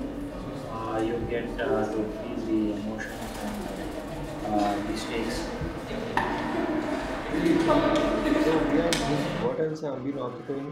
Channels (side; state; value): both; identical; correlation 1.00